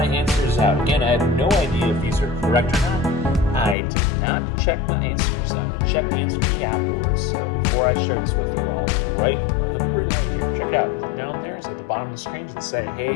my answers out. Again, I have no idea if these are correct or not. I did not check my answers out. Check my answers afterwards. So before I share this with you all, right? Check it out. Down there, so at the bottom of the screen, it said,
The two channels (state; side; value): drops out; right; at 3.8 s